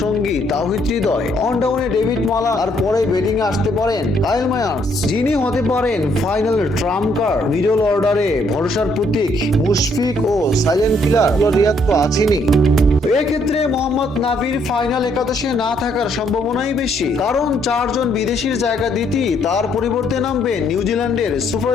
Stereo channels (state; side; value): normal; both; correlation 0.69